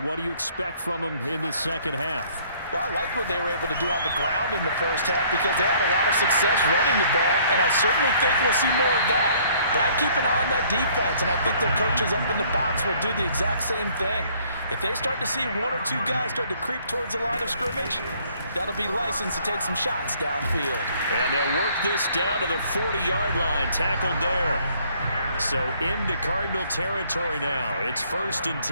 do you expect from them in this second half? Well, I like what they were able to do on the ground in the first half because they had a lot of success running the ball, and I certainly think we'll see more of that. But I'd keep an eye on that defense, and I think their coaches up in the box will do the exact same thing. If they start to see one or two guys start to creep towards the line of scrimmage, that'll be licensed to take some shots downfield. And they'll work this down to the 40-yard line, tackled there. So into Cardinal territory now. It's 1st and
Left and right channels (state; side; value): inverted; both; correlation -0.60